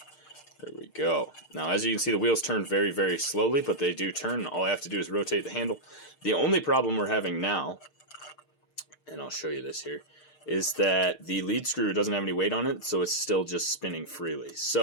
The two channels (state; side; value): late; right; 6.6 ms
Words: There we go. Now, as you can see, the wheels turn very, very slowly, but they do turn. All I have to do is rotate the handle. The only problem we're having now, and I'll show you this here, is that the lead screw doesn't have any weight on it, so it's still just spinning freely.